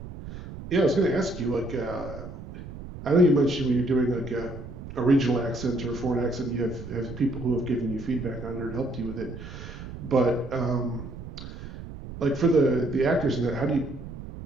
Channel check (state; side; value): noise; right; rumble, 12 dB below the sound